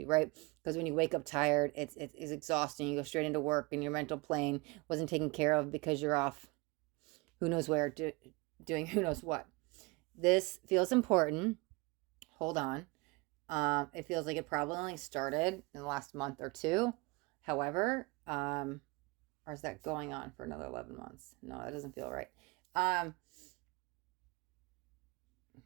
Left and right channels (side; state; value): left; quieter; 26.2 dB